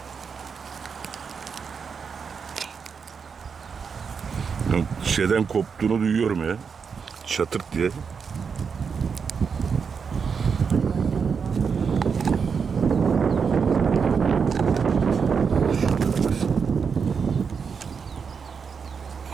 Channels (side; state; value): left; quieter; 6.0 dB